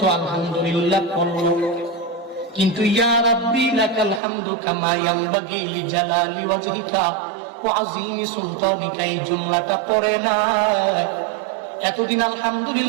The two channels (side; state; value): left; drops out; at 4.2 s